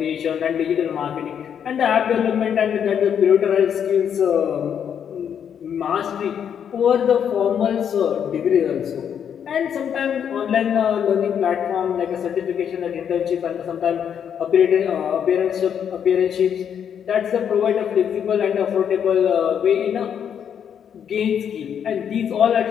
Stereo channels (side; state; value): right; quieter; 8.3 dB